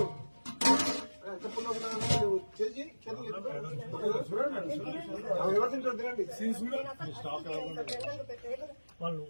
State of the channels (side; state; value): both; inverted; correlation -1.00